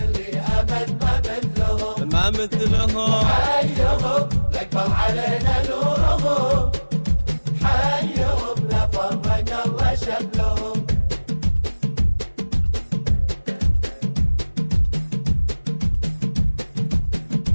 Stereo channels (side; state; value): both; inverted; correlation -1.00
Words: أبد ما مثلهم. ما مثلهم. حيهم يكبر علينا نورهم، حيهم لا فرق الله شملهم.